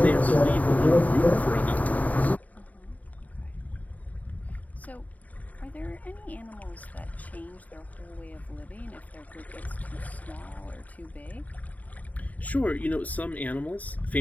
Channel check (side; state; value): right; late; 0.073 ms